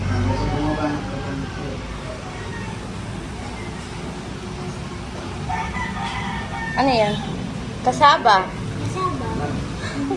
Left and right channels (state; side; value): identical; both; correlation 1.00